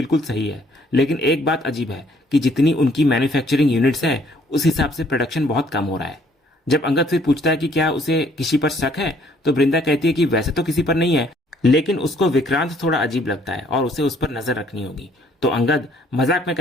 सही है, लेकिन एक बात अजीब है कि जितनी उनकी मैन्युफैक्चरिंग यूनिट्स है उस हिसाब से प्रोडक्शन बहुत कम हो रहा है। जब अंगद फिर पूछता है कि क्या उसे किसी पर शक है, तो वृंदा कहती है कि वैसे तो किसी पर नहीं है, लेकिन उसको विक्रांत थोड़ा अजीब लगता है और उसे उस पर नजर रखनी होगी। तो अंगद मजाक में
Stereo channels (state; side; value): normal; both; correlation 0.63